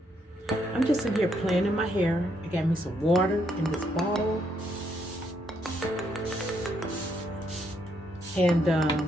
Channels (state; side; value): normal; both; correlation 0.74